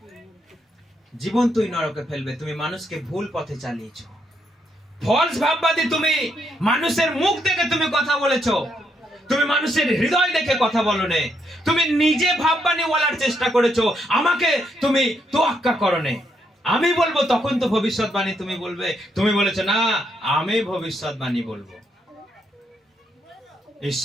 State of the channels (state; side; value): normal; both; correlation 0.77